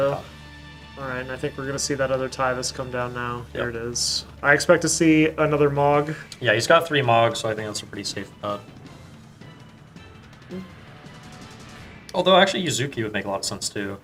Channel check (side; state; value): both; identical; correlation 1.00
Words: Oh. Alright, and I think we're going to see that other Tyvus come down now. There Yep. it is. I expect to see another Mog. Yeah, he's got 3 Mogs, so I think that's a pretty safe bet. Although actually Yuzuki would make a lot of sense too.